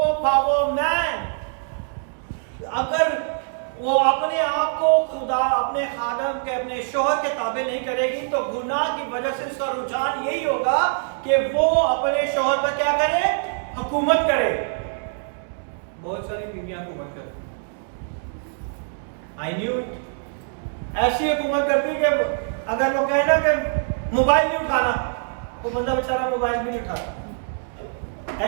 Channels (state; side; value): silent; left; 63 dB below the other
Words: man. अगर वो अपने आप को खुदा अपने खादम के अपने शोहर के ताबे नहीं करेगी तो गुनाह की वजह से उसका रुझान यही होगा कि वो अपने शोहर पर क्या करे? हुकूमत करे. बहुत सारी बीवियां हुकूमत करती. I knew it. ऐसी हुकूमत करती कि अगर वो कहे ना कि मोबाइल नहीं उठाना, वो बंदा बेचारा मोबाइल भी नहीं उठाता.